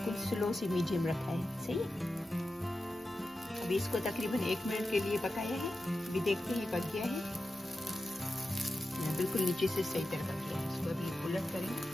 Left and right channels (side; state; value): both; normal; correlation 0.91